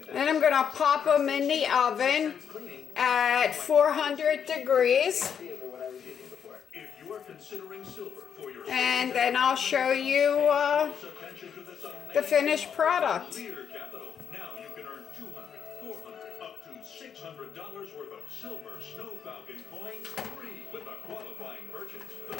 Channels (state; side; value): quieter; right; 7.7 dB